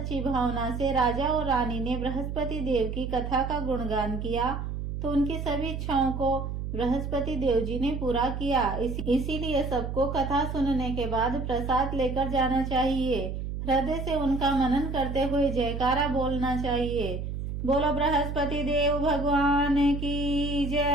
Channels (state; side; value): noise; right; hum, 5 dB below the sound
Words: भावना से राजा और रानी ने बृहस्पति देव की कथा का गुणगान किया तो उनकी सभी इच्छाओं को बृहस्पति देव जी ने पूरा किया। इसीलिए सबको कथा सुनने के बाद प्रसाद लेकर जाना चाहिए। हृदय से उनका मनन करते हुए जयकारा बोलना चाहिए। बोलो बृहस्पति देव भगवान की